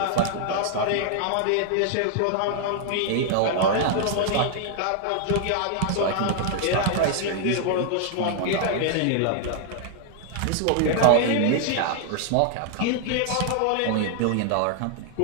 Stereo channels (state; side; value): different; both; correlation 0.00